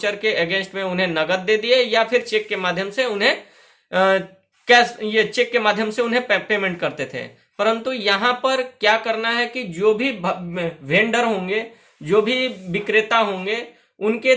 के अगेंस्ट में उन्हें नगद दे दिए या फिर चेक के माध्यम से उन्हें कैश, ये चेक के माध्यम से उन्हें पेमेंट करते थे। परंतु यहाँ पर क्या करना है कि जो भी वेंडर होंगे, जो भी विक्रेता होंगे, उनके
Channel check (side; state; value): both; identical; correlation 1.00